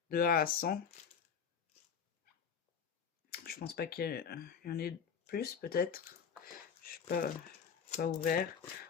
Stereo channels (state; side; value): quieter; right; 7.0 dB